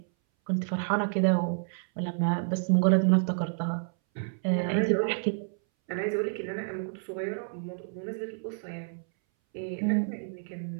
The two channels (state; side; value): silent; left; 58 dB below the other